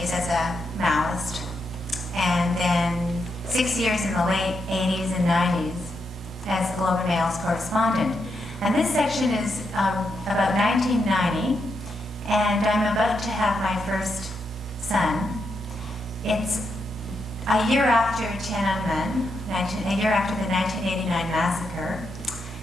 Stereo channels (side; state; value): both; normal; correlation 0.82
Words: as a Maoist, and then 6 years in the late 80s and 90s as the Globe and Mail's correspondent. And this section is about 1990, and I'm about to have my first son. It's a year after Tiananmen, a year after the 1989 massacre,